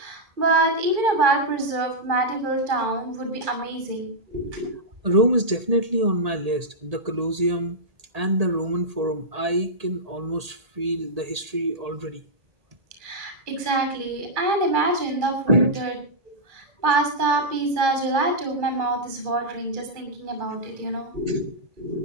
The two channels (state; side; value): late; left; 1.8 ms